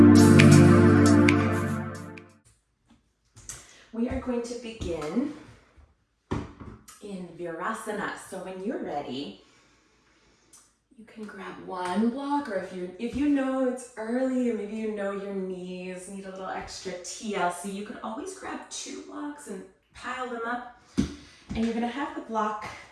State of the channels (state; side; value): identical; both; correlation 1.00